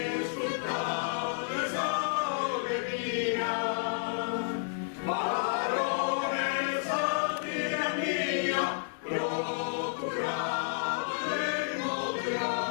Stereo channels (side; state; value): right; silent; digital silence